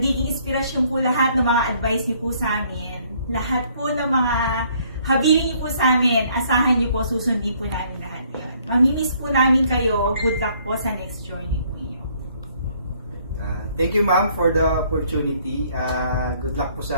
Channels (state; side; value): inverted; both; correlation -0.64